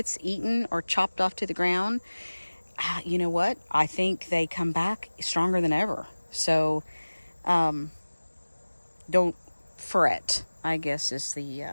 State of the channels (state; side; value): inverted; both; correlation -1.00